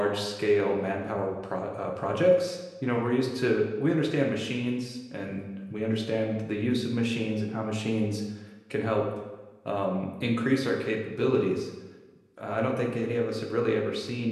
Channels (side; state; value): both; identical; correlation 1.00